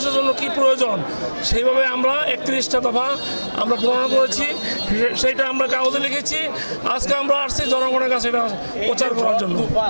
জন্য কি প্রয়োজন, সেইভাবে আমরা 31টা দফা আমরা প্রণয়ন করেছি, সেইটা আমরা কাগজে লিখেছি। আজকে আমরা আসছি জনগণের কাছে এটা প্রচার করার জন্য।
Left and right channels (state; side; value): inverted; both; correlation -1.00